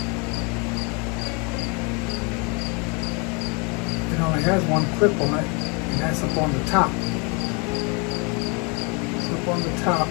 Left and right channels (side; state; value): right; quieter; 32.5 dB